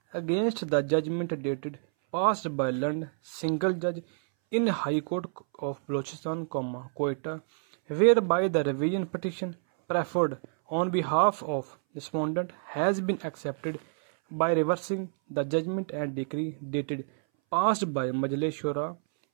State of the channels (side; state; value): left; silent; 59 dB below the other